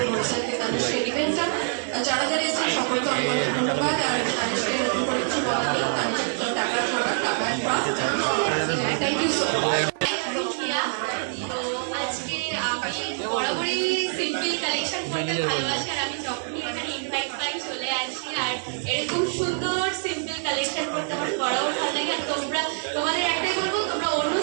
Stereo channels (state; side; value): silent; left; 61 dB below the other